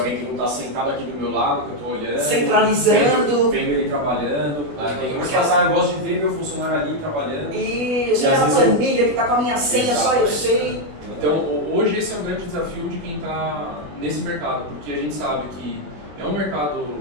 que não está sentado aqui do meu lado, que eu estou olhando, centralizando, vendo ele trabalhando. Tem uns que eu gosto de ver meu funcionário ali trabalhando. E chega na planilha que está com a minha senha, Exato. só eu sei. Então, hoje esse é um grande desafio de quem está nesse mercado, porque a gente sabe que é um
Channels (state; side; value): late; left; 21 ms